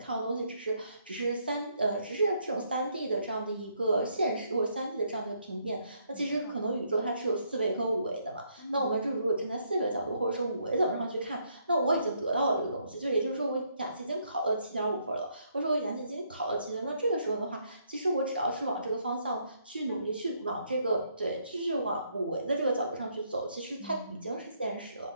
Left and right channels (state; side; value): inverted; both; correlation -0.72